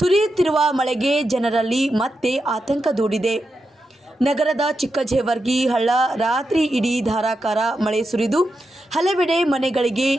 ಮಳೆಗೆ ಜನರಲ್ಲಿ ಮತ್ತೆ ಆತಂಕ ದೂಡಿದೆ. ನಗರದ ಚಿಕ್ಕಜೇವರ್ಗಿ ಹಳ್ಳ ರಾತ್ರಿ ಇಡೀ ಧಾರಾಕಾರ ಮಳೆ ಸುರಿದು ಹಲವೆಡೆ ಮನೆಗಳಿಗೆ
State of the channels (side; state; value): both; normal; correlation 0.87